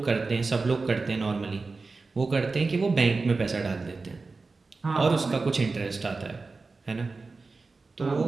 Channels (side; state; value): left; quieter; 4.0 dB